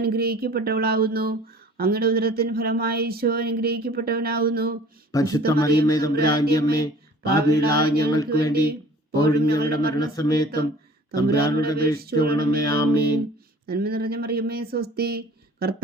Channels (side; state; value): both; normal; correlation 0.48